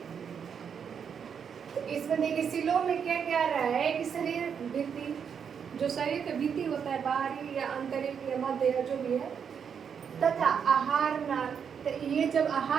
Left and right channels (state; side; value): quieter; left; 7.2 dB